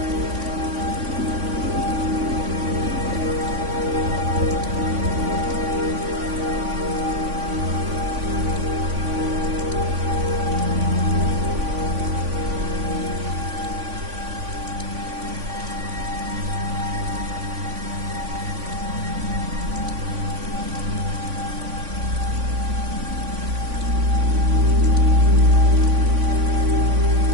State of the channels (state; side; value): late; left; 3.5 ms